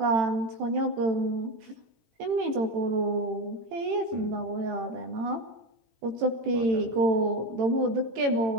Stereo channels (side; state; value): left; late; 18 ms